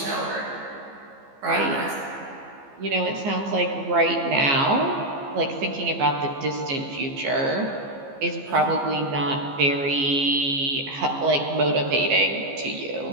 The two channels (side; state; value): left; late; 15 ms